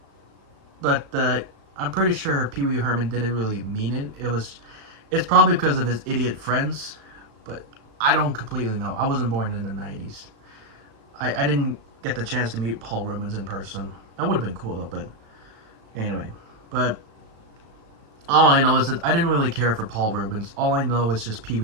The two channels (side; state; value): left; late; 36 ms